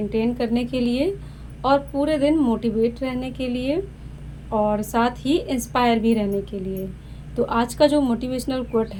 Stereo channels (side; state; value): both; identical; correlation 1.00